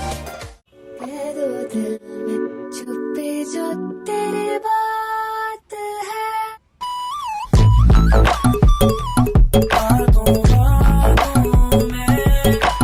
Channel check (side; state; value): both; identical; correlation 1.00